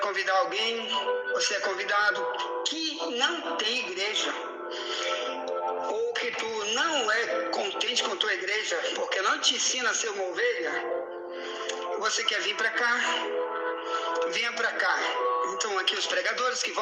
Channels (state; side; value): identical; both; correlation 1.00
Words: alguém, você é convidado, que não tem igreja, ou que tu não é contente com tua igreja, porque não te ensina a ser uma ovelha, você quer vir para cá, venha para cá. Então aqui os pregadores que